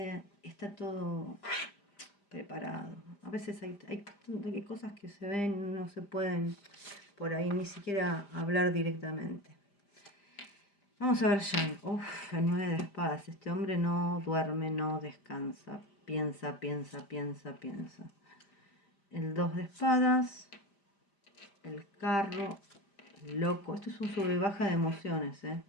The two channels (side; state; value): right; late; 5.0 ms